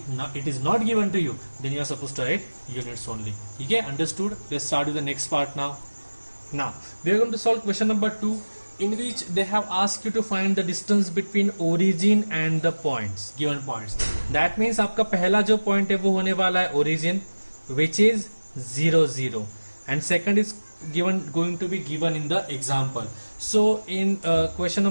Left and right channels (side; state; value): both; inverted; correlation -1.00